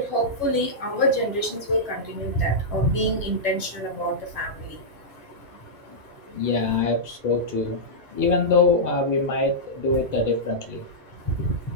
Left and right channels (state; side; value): late; left; 2.3 ms